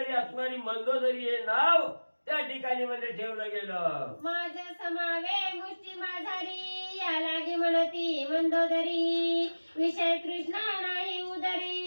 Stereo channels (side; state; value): both; inverted; correlation -1.00